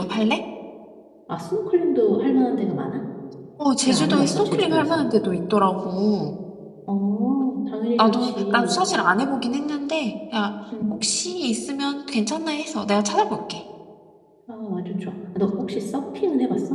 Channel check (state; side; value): identical; both; correlation 1.00